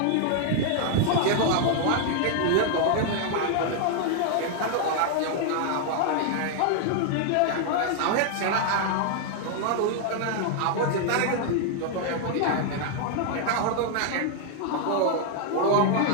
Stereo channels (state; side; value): different; both; correlation 0.00